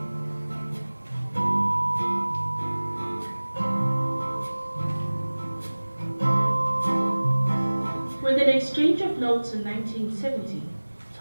With an exchange of notes in 1970,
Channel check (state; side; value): inverted; both; correlation -1.00